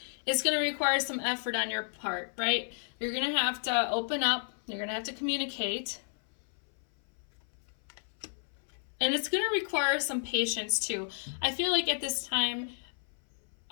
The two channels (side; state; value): right; silent; 56 dB below the other